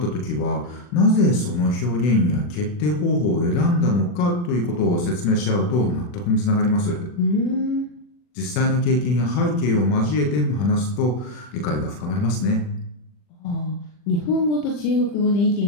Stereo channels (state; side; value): late; right; 40 ms